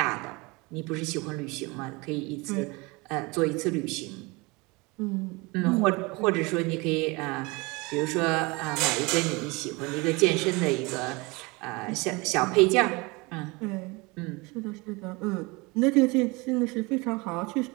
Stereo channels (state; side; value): quieter; left; 25.8 dB